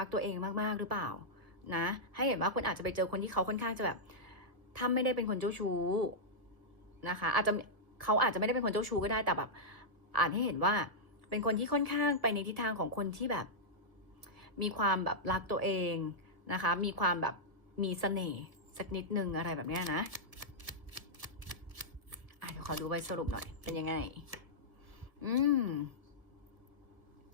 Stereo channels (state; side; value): late; left; 1.8 ms